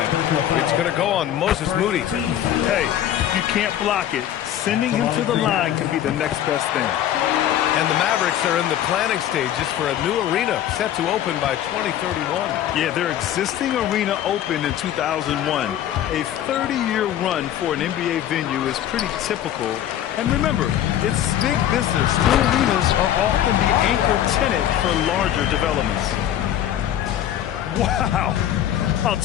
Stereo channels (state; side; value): quieter; right; 11.3 dB